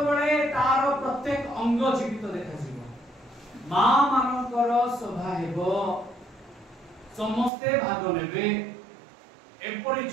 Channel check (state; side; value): drops out; left; at 7.5 s